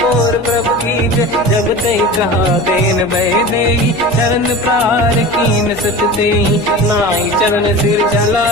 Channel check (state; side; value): noise; left; hum, 20 dB below the sound